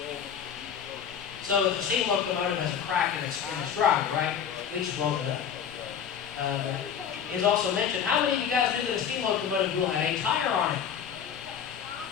So if the steam locomotive has a crack in its drive, right, we just blow it up. It's also mentioned, how many of you guys knew that a steam locomotive wheel had a tire on it?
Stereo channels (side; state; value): right; quieter; 8.1 dB